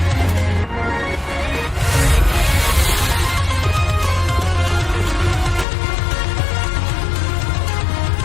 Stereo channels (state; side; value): drops out; right; at 5.7 s